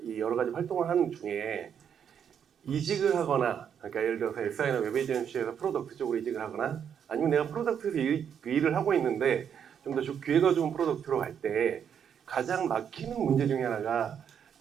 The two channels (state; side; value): quieter; left; 8.1 dB